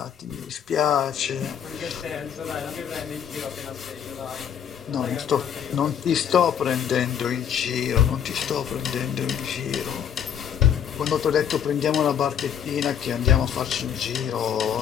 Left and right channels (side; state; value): right; quieter; 8.6 dB